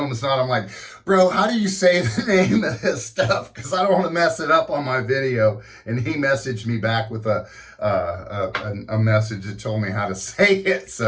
Knot. I'm like, bro, how do you say the name of this stuff? Because I don't want to mess it up on my video. And he messaged me back with a message that told me how to say it.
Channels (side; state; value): both; identical; correlation 1.00